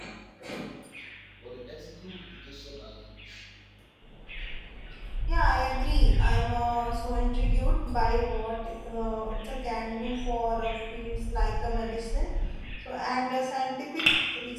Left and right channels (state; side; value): identical; both; correlation 1.00